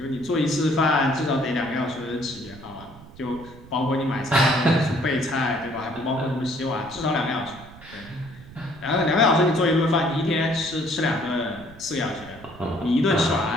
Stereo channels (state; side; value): noise; right; rumble, 19 dB below the sound